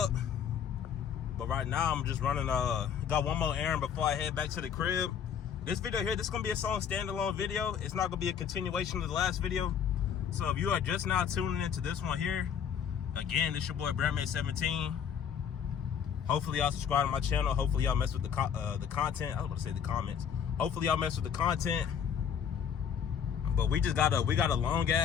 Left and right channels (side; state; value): right; quieter; 8.0 dB